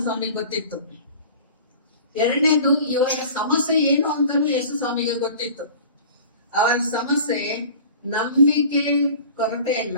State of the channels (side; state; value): both; inverted; correlation -0.42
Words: ಸ್ವಾಮಿಗೆ ಗೊತ್ತಿತ್ತು. ಎರಡನೇದು ಇವರ ಸಮಸ್ಯೆ ಏನು ಅಂತಲೂ ಯೇಸು ಸ್ವಾಮಿಗೆ ಗೊತ್ತಿತ್ತು. ಅವರ ಸಮಸ್ಯೆ ನಂಬಿಕೆ ಕೊರತೆ